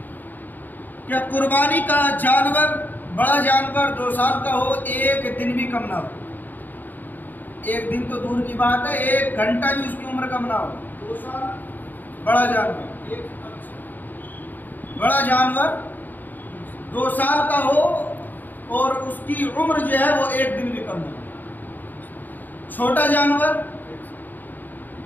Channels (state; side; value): late; right; 0.086 ms